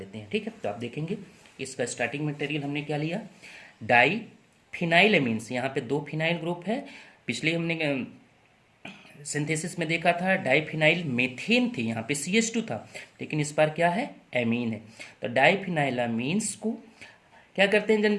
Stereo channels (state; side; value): identical; both; correlation 1.00